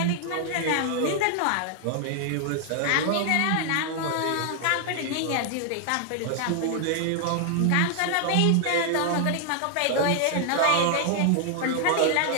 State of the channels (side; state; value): both; different; correlation 0.00